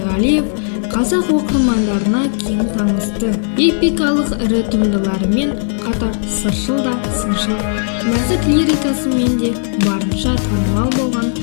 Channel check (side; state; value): right; silent; digital silence